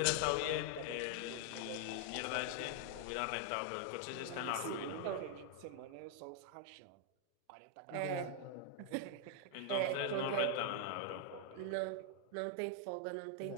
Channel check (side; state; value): both; different; correlation 0.00